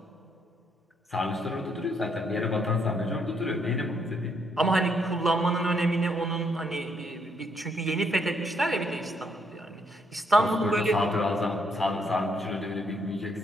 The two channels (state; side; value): normal; both; correlation 0.73